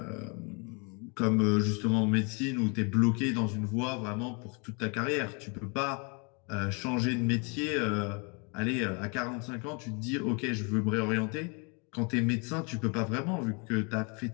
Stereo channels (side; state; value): right; quieter; 33.7 dB